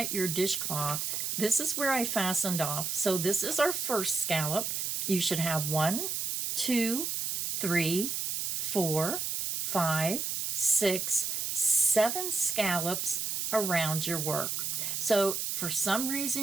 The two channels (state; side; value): noise; right; hiss, 1 dB below the sound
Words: your dishcloth, this is where I fastened off. So this is our first scallop. You should have 1, 2, 3, 4, 5, 6, 7 scallops around your work. So for some